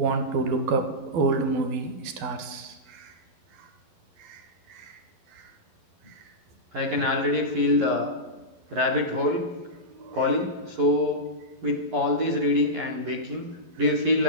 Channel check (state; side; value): late; left; 12 ms